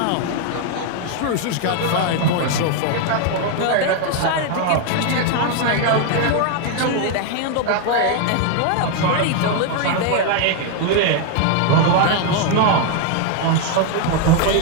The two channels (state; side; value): different; both; correlation 0.01